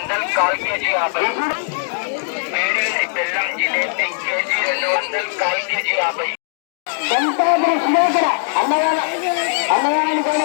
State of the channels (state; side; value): silent; right; digital silence